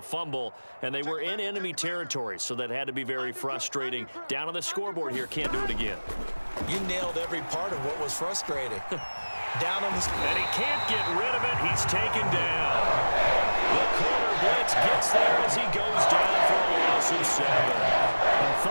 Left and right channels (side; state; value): both; inverted; correlation -1.00